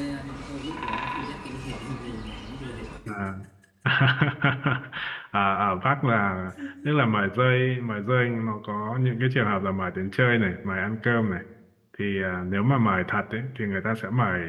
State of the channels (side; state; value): both; identical; correlation 1.00